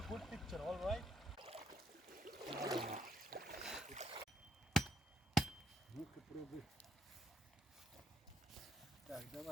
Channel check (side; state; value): both; normal; correlation 0.74